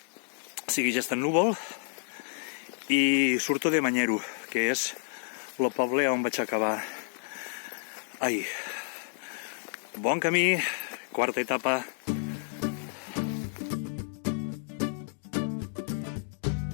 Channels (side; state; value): right; silent; 58 dB below the other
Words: Segueix estant núvol i surto de Manyero, que és el poble on vaig acabar ahir. Bon camí, quarta etapa.